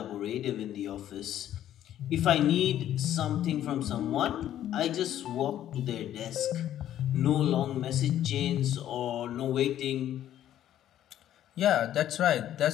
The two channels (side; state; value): right; quieter; 11.7 dB